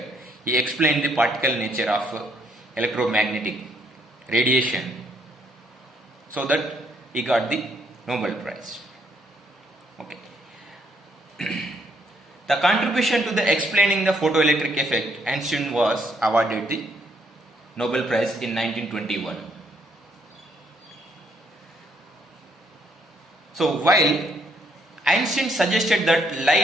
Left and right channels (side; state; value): both; normal; correlation 0.70